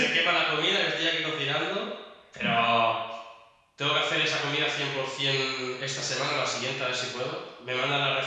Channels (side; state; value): both; identical; correlation 1.00